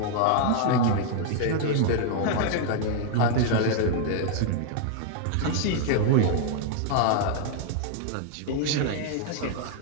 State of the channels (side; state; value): both; different; correlation 0.00